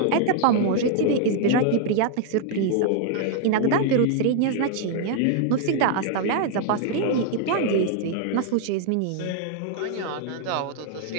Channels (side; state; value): both; different; correlation 0.00